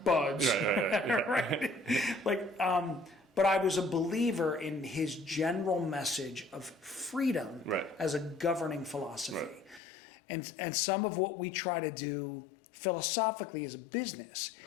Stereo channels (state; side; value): drops out; right; at 9.8 s